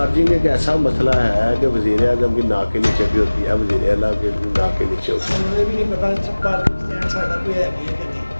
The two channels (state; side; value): inverted; both; correlation -1.00